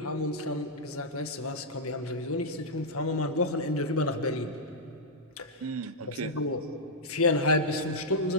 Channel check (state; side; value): normal; both; correlation -0.07